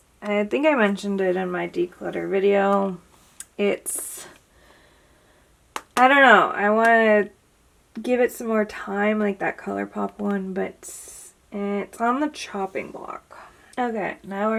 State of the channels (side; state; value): both; identical; correlation 1.00